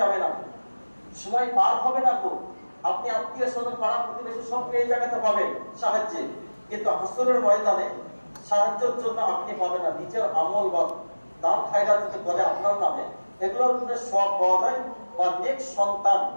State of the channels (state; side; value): inverted; both; correlation -1.00